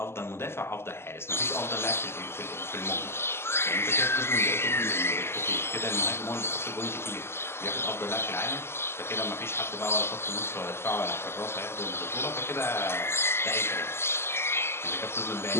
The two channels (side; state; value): right; late; 0.12 ms